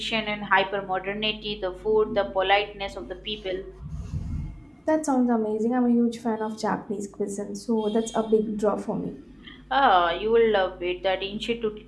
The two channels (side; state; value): both; identical; correlation 1.00